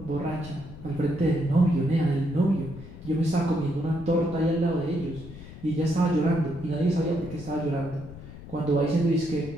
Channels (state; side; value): noise; left; rumble, 15 dB below the sound